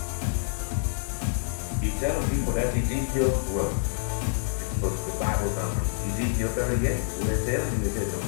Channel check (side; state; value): right; silent; digital silence